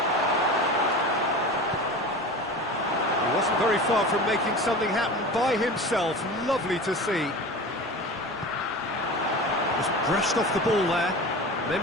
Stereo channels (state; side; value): normal; both; correlation 0.33